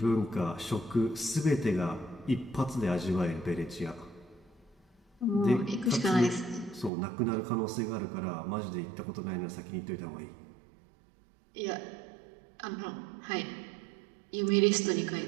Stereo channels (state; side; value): drops out; left; at 6.9 s